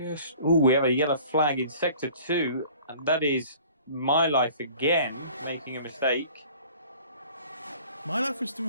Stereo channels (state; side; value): inverted; both; correlation -0.49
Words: we have a yellow flag in sector 2, and that is My Life again making a mistake. My Life was